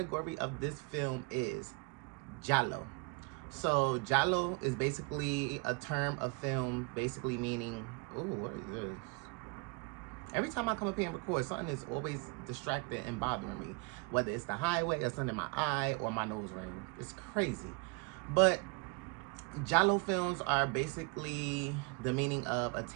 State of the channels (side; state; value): left; quieter; 30.5 dB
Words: of this film is Giallo. So Giallo is basically a term of film, basically meaning, ooh, what is this? Every time I come up here and record, something is always distracting and bothering me, whether it's the highway or something in my eye or my nose ring. It's crazy. But Giallo films are basically the meaning of